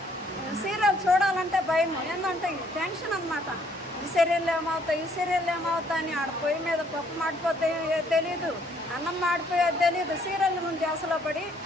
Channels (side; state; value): both; normal; correlation 0.65